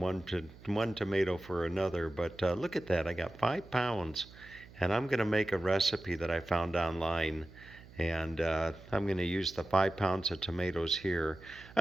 tomato for another. But look at that, I got 5 pounds, and I'm gonna make a recipe that I found online, and I'm gonna use the 5 pounds of tomatoes here.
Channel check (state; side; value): noise; right; hum, 20 dB below the sound